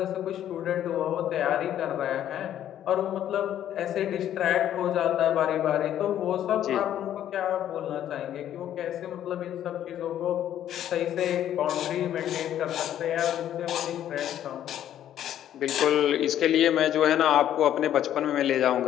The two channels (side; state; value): right; quieter; 11.2 dB